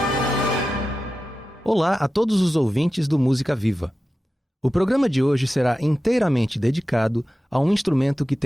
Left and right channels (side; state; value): both; normal; correlation 0.93